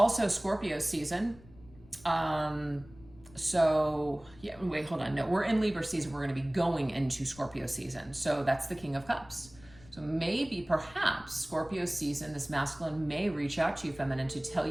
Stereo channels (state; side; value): noise; left; rumble, 23 dB below the sound